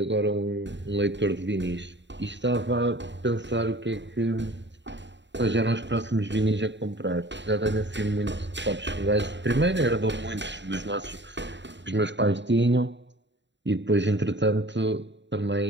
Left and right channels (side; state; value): left; late; 0.52 ms